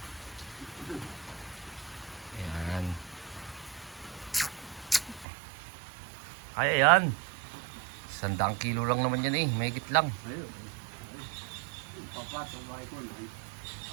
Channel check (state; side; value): drops out; left; at 5.2 s